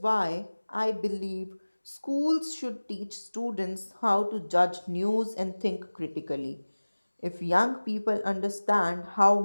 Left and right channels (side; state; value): both; inverted; correlation -1.00